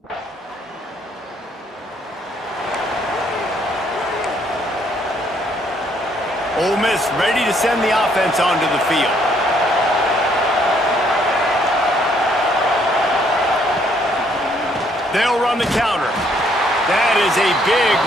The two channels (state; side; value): normal; both; correlation 0.68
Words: Ole Miss ready to send the offense onto the field. They'll run the counter. That is a big